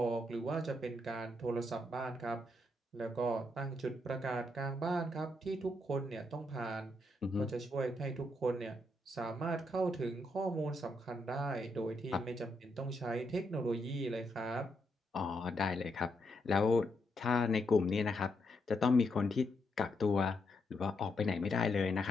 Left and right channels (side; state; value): both; normal; correlation 0.79